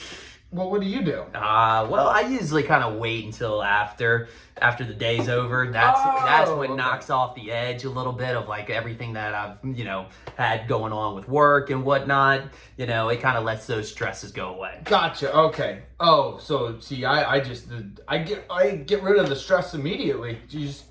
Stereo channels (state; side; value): identical; both; correlation 1.00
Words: Well, what do you do? Well, I usually kind of wait until after the day's over. That's what knocks off the edge a little bit of like everything that I've had going on with work and whatnot. It kind of lets those stresses go away. Gotcha. Okay. Oh, so see, I get rid of the stress immediately. You just